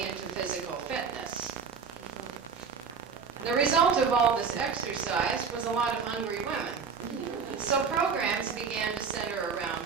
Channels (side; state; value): left; quieter; 5.9 dB